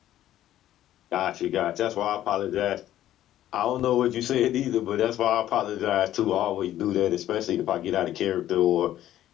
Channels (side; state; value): right; quieter; 12.7 dB